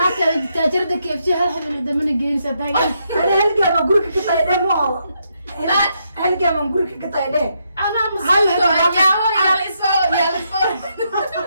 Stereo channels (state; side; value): inverted; both; correlation -0.78